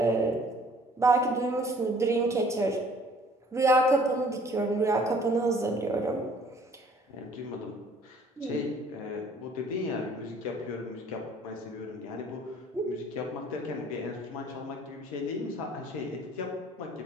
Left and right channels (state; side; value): normal; both; correlation 0.56